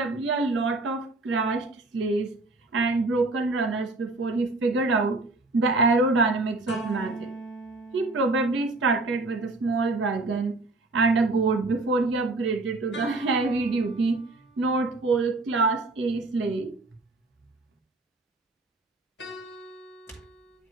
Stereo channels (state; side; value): quieter; left; 3.1 dB